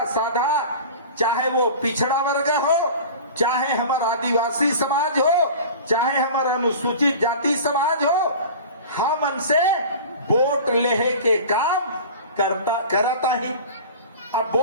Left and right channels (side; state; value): both; inverted; correlation -0.37